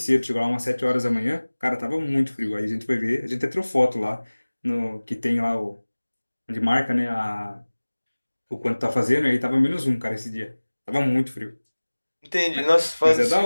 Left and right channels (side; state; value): both; inverted; correlation -1.00